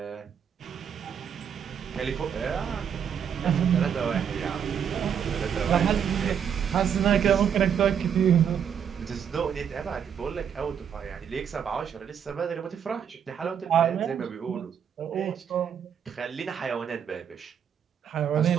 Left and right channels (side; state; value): left; quieter; 8.0 dB